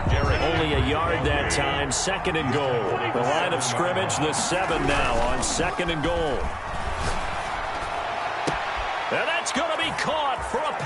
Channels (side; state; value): both; identical; correlation 1.00